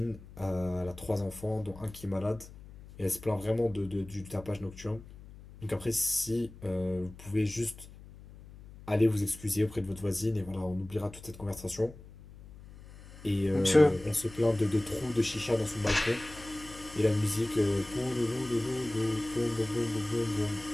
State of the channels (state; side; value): noise; left; hum, 18 dB below the sound